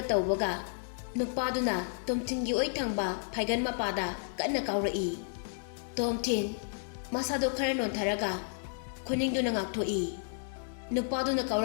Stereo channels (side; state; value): right; silent; 56 dB below the other